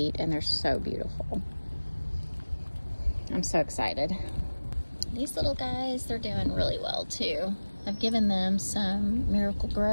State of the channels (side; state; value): both; inverted; correlation -1.00